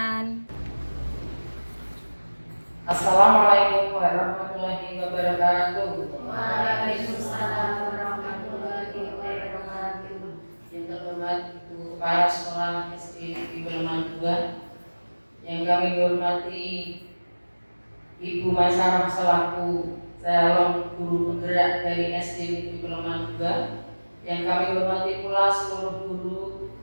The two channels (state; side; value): inverted; both; correlation -1.00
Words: Assalamualaikum warahmatullahi wabarakatuh. Waalaikumsalam warahmatullahi wabarakatuh. Yang terhormat Ibu Kepala Sekolah SD di Peleman 2, yang kami hormati Ibu Maisarah selaku calon guru penggerak dari SD di Peleman 2, yang kami hormati pula seluruh guru